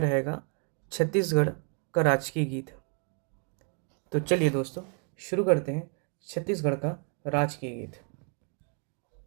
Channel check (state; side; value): quieter; left; 38.9 dB